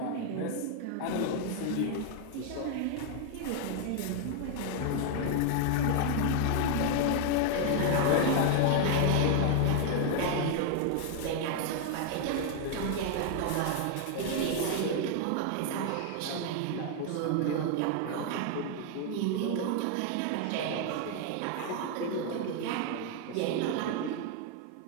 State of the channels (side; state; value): both; different; correlation 0.00